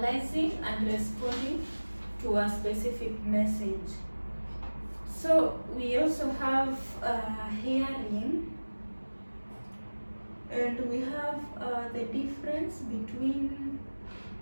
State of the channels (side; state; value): both; inverted; correlation -1.00